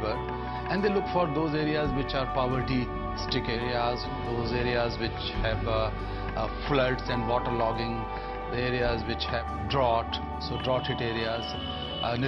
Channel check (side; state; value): both; identical; correlation 1.00